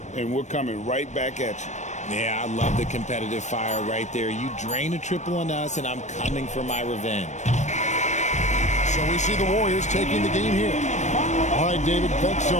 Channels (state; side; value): late; right; 0.34 ms